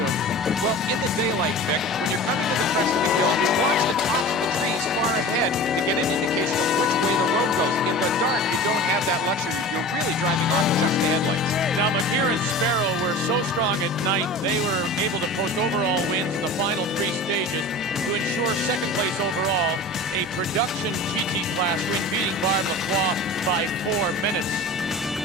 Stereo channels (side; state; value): both; normal; correlation 0.36